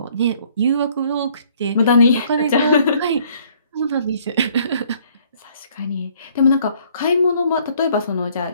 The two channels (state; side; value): inverted; both; correlation -0.61